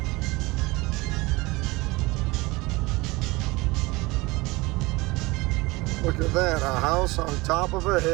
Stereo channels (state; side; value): quieter; left; 22.6 dB